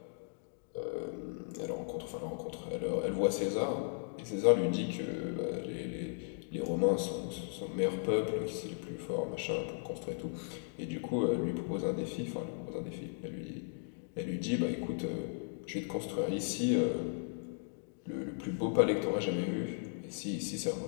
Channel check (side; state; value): right; silent; digital silence